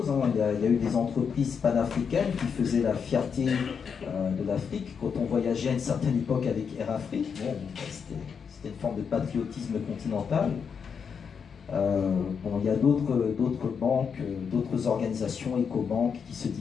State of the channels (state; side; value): quieter; right; 6.5 dB